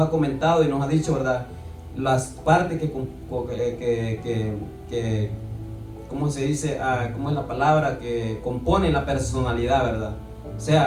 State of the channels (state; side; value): identical; both; correlation 1.00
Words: ha comentado y nos ha dicho, ¿verdad? Las partes que ¿cómo se dice? ¿Cómo es la palabra? Que componen la personalidad, ¿verdad? O